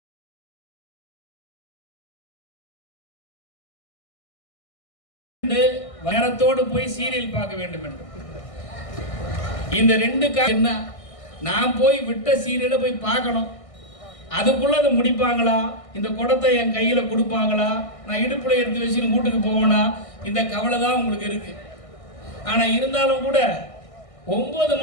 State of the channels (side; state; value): right; late; 1.6 ms